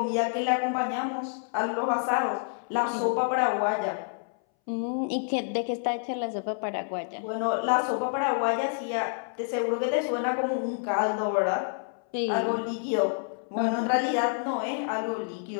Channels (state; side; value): silent; right; 59 dB below the other